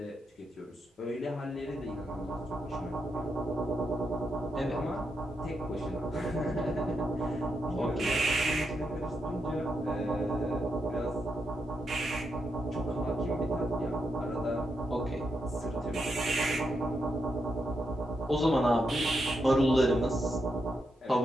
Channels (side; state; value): both; normal; correlation 0.83